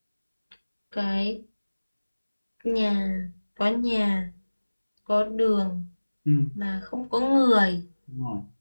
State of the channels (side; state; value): both; inverted; correlation -1.00